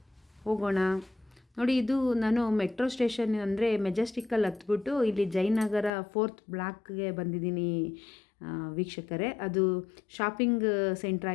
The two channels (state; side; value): drops out; right; at 5.9 s